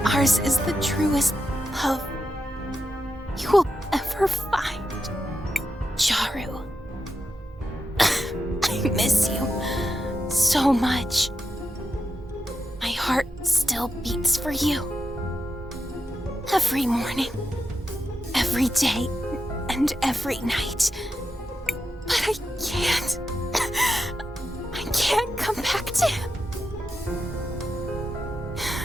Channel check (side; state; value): both; normal; correlation 0.87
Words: Ours is the truest love you will ever find. Jaru. I miss you so much. My heart still beats for you. Every morning, every day, and every night. But I can't. I can't come back to him.